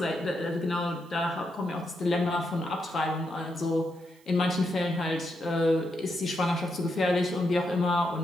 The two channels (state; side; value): noise; right; hiss, 29 dB below the sound